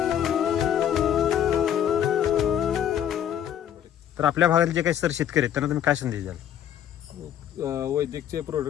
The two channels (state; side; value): quieter; right; 10.0 dB